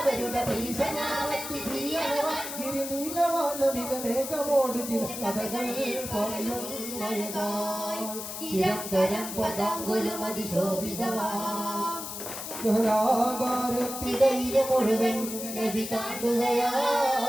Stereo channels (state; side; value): noise; left; hiss, 8 dB below the sound